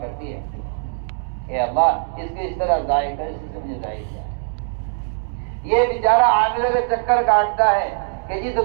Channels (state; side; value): silent; left; digital silence